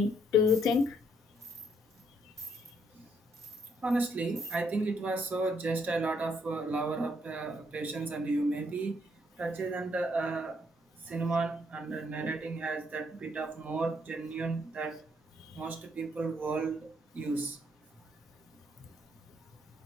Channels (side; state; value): both; normal; correlation 0.71